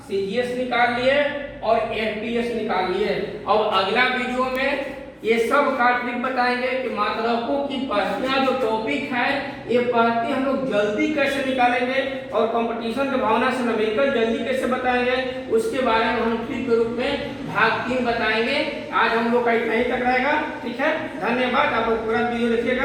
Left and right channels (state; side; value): identical; both; correlation 1.00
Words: सीजीएस निकाल लिए और एफपीएस निकाल लिए। अब अगला वीडियो में ये सब का ट्रिक बताएंगे कि मात्रकों की पहतियां जो टॉपिक है, ये पहती हम लोग जल्दी कैसे निकालेंगे और कंपटीशन की भावना से न्यूमेरिकल जल्दी कैसे बताएंगे, उसके बारे में हम ट्रिक के रूप में भाग 3 बताएंगे। आज हम लोग का इतना ही तक रहेगा, ठीक है। धन्यवाद। आप लोग पूरा वीडियो